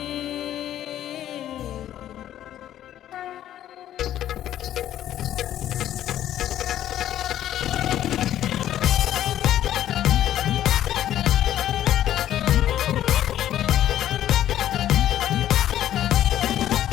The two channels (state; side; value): quieter; right; 11.9 dB